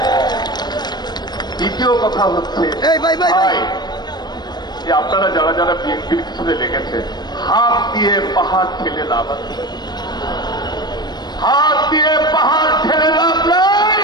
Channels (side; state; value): right; late; 0.20 ms